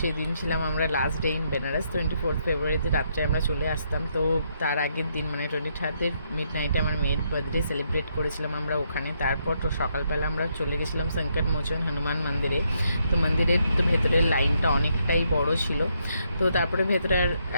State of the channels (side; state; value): both; inverted; correlation -0.75